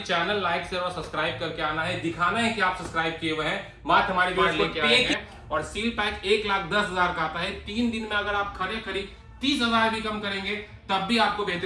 लाइक शेयर और सब्सक्राइब करके आना है, दिखाना है कि आप सब्सक्राइब किए हुए हैं, मात्र हमारे वीडियो लेके आएंगे। और सील पैक 1,10,000 का आता है। 3 दिन में अगर आप खरी 30,000 भी कम करेंगे तब भी आपको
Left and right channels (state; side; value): identical; both; correlation 1.00